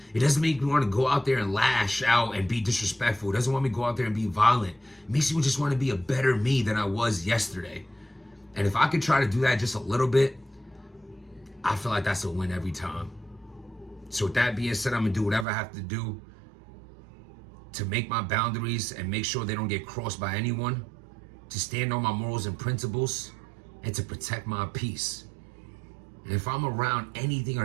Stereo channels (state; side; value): drops out; left; at 15.5 s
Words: It doesn't make me want to go out there and lash out and be disrespectful. It doesn't want me to go out there and be violent. It makes me just want to be a better me than I was yesterday. And if I could try to do that just a little bit, I feel like that's a win every time. So with that being said, I'm going to do whatever I have to do to make my boundaries and make sure they don't get crossed by anyone, to stand on my morals and principles, and to protect my peace. And if I'm around anything